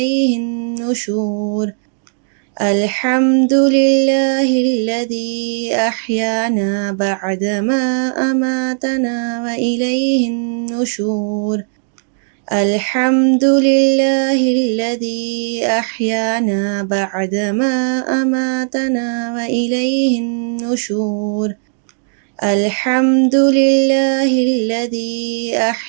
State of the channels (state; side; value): silent; left; digital silence